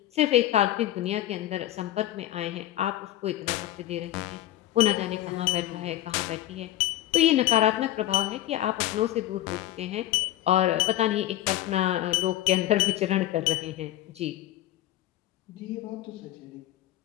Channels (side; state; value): right; quieter; 14.0 dB